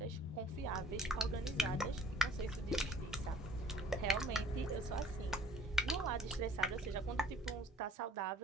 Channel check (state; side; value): normal; both; correlation 0.54